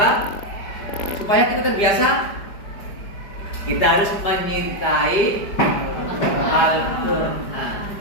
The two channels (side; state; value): right; late; 5.0 ms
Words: Supaya kita terbiasa, kita harus menyintai Al-Quran.